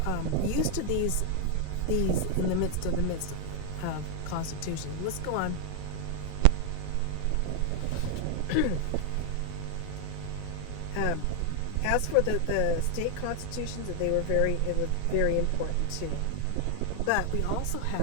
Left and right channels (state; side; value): different; both; correlation 0.00